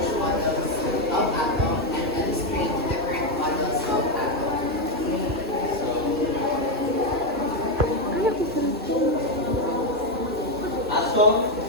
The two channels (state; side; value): normal; both; correlation 0.06